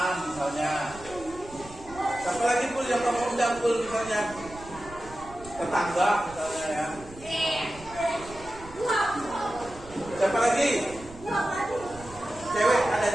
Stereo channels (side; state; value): right; noise; rumble, 18 dB below the sound